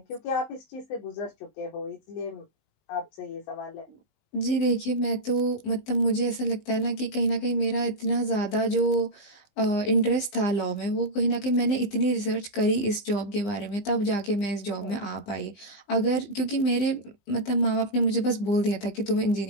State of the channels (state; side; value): late; right; 19 ms